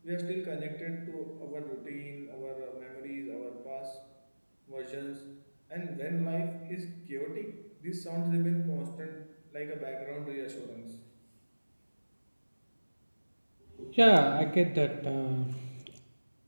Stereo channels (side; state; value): both; inverted; correlation -1.00